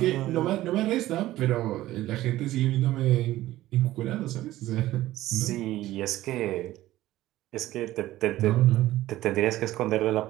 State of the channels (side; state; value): left; quieter; 15.5 dB